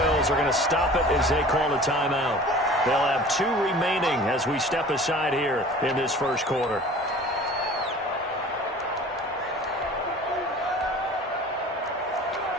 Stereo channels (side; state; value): both; normal; correlation 0.44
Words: are going to stop it as they call a timeout. They'll have 2 remaining as we step aside here in this first quarter.